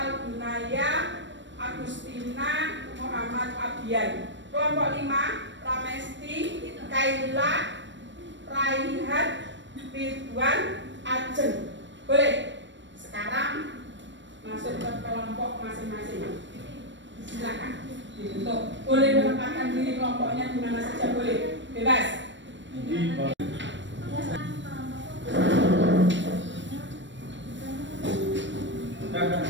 Agustina, Muhammad Abian. Kelompok lima, Ramesti, Kaila, Raihat, Ridwan, Ajeng. Boleh? Sekarang masuk ke kelompok masing-masing. Silakan dibentuk. Boleh menempatkan diri kelompoknya di mana saja, boleh. Bebas.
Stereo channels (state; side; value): late; left; 0.53 ms